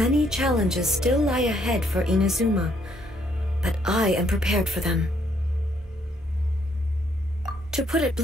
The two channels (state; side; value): normal; both; correlation 0.70